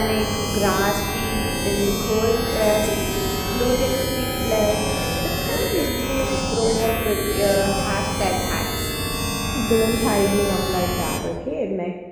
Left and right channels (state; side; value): identical; both; correlation 1.00